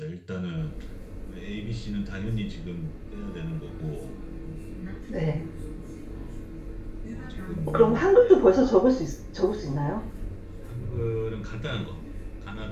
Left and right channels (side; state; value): both; identical; correlation 1.00